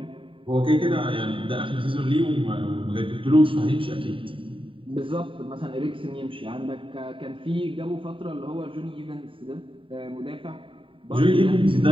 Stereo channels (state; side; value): late; left; 0.25 ms